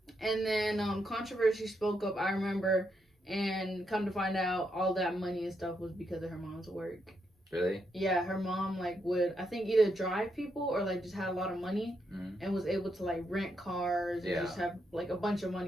And then Controversy spoke up, I remember. And come to find out, all that money and stuff was because of her mom's work. Really? Yeah, her mom would, I think, either drive people or just had a lot of money and was able to rent cars and just have a bunch of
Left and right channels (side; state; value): both; normal; correlation 0.80